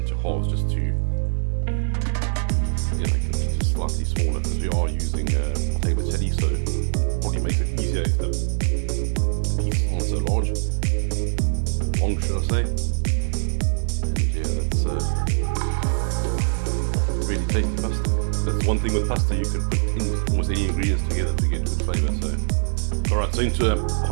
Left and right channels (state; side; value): silent; left; digital silence